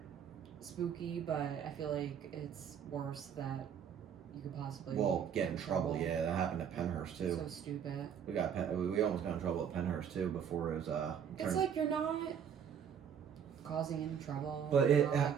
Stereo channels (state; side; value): quieter; left; 8.1 dB